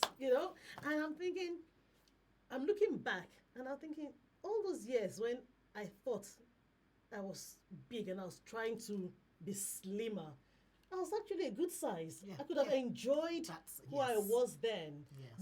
and I'm thinking, I'm looking back and I'm thinking, all those years when I thought I was big and I was trying to be slimmer, I was actually a good size. Yeah, I could have enjoyed who I yes. was then. Yes.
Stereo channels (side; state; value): both; identical; correlation 1.00